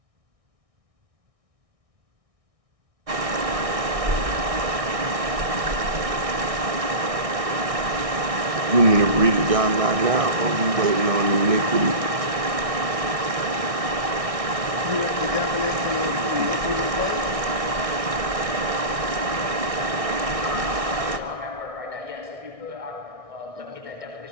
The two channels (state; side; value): late; left; 1.6 ms